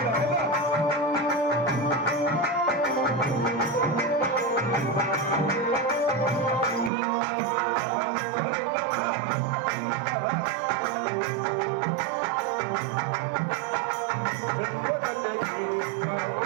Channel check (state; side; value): drops out; left; at 6.9 s